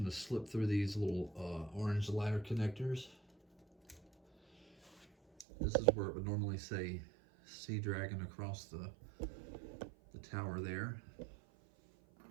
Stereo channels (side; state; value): left; drops out; at 5.5 s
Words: to slip through these little orange ladder connectors. This is where it would normally say Sea Dragon across the tower there.